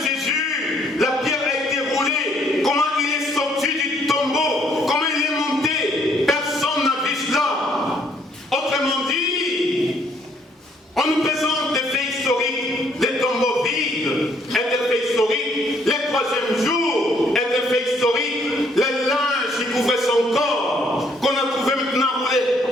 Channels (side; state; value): both; normal; correlation 0.66